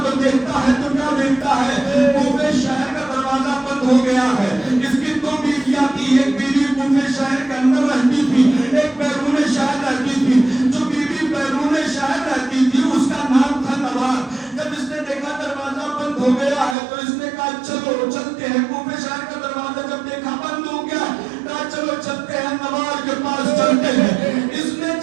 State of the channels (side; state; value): left; drops out; at 16.8 s